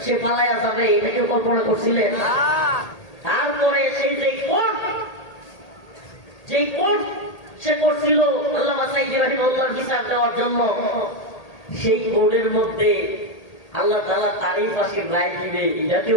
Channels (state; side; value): late; right; 1.8 ms